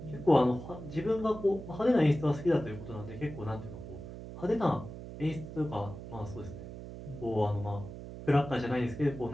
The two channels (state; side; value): noise; right; hum, 11 dB below the sound